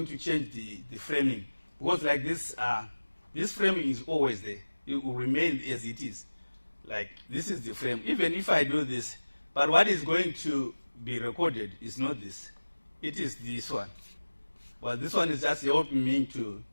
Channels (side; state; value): both; inverted; correlation -1.00